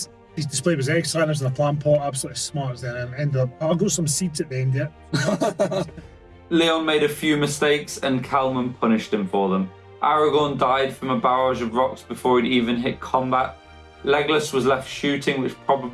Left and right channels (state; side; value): identical; both; correlation 1.00